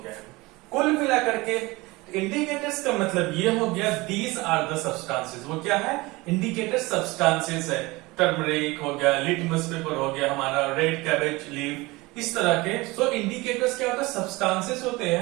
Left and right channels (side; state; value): left; quieter; 22.4 dB